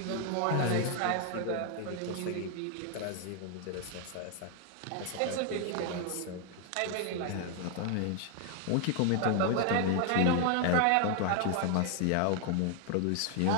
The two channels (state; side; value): different; both; correlation 0.00